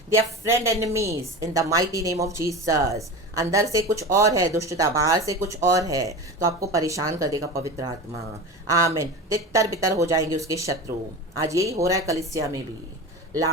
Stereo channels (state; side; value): normal; both; correlation 0.29